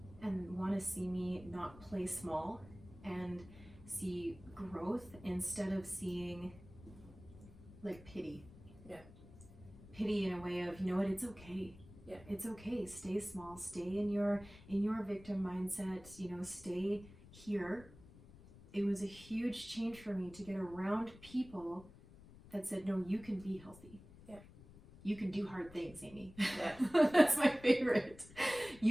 and want to see me not play small and see growth instead of seeing like pity. Yeah. Pity in a way of, you know what, it's okay. Yeah. It's okay. Stay small. Stay in your victim mindset. You know, stay here. It was a huge change for me to get around people that said, no, you can be healthy. Yeah. You can do hard things, Amy. Yeah. That's my favorite.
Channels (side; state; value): left; noise; rumble, 19 dB below the sound